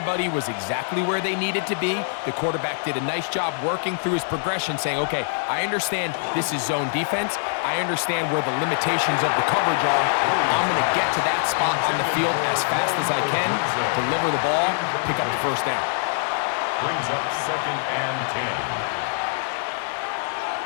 was exactly where they needed to be. The quarterback did a nice job working through his progression, saying, okay, I understand this is zone defense. I understand where the limitations of the coverage are. I'm going to get to that spot on the field as fast as I can, deliver the ball, pick up the first down. Brings up second and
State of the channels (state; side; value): silent; right; 59 dB below the other